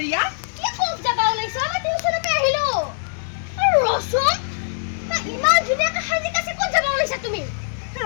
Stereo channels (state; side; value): silent; right; digital silence